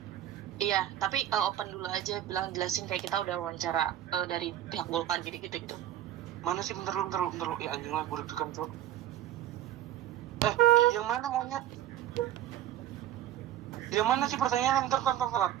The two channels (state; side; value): quieter; left; 12.1 dB